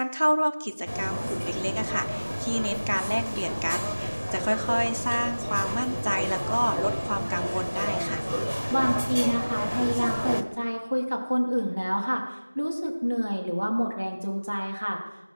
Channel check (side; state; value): both; inverted; correlation -1.00